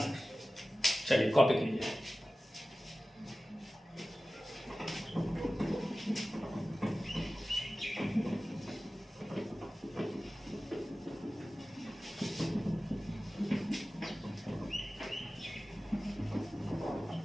चलिए कॉपी कीजिए।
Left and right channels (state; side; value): normal; both; correlation 0.96